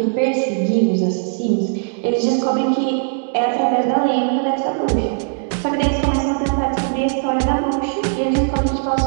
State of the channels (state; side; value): silent; left; digital silence